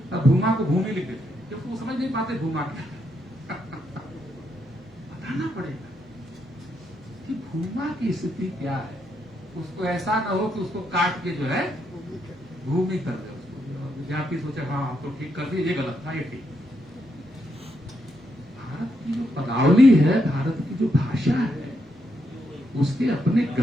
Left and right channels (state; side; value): normal; both; correlation 0.79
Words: को भूमि लिख देते हैं क्योंकि वो समझ नहीं पाते भूमा क्या है। बताना पड़ेगा कि भूमा की स्थिति क्या है। उसको ऐसा ना हो कि उसको काट के जो है भूमि कर दे उसको, विद्यार्थी सोचे हाँ हम तो ठीक कर दिए, ये गलत था, ये ठीक। भारत की जो पदावली है, भारत की जो भाषा है, उसके अपने